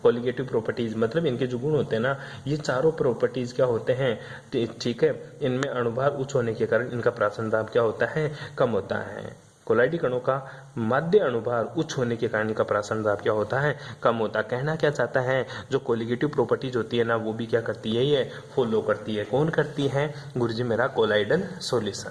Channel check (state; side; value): identical; both; correlation 1.00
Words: कोलिगेटिव प्रॉपर्टीज, मतलब इनके जो गुण होते हैं ना, ये चारों प्रॉपर्टीज क्या होते हैं, ठीक है, इनमें अणुभार उच्च होने के कारण इनका प्रासरण दाब क्या होता है, कम होता है। कोलाइडी कणों का माध्य अणुभार उच्च होने के कारण इनका प्रासरण दाब क्या होता है, कम होता है। कहना क्या चाहता है, जो कोलिगेटिव प्रॉपर्टीज होती है ना, वो भी क्या करती है, ये फॉलो करती है। कौन करती है गुरुजी, मेरा कोलाइडल